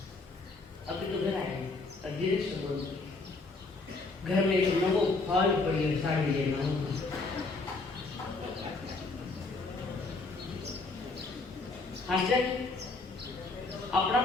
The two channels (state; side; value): quieter; right; 3.5 dB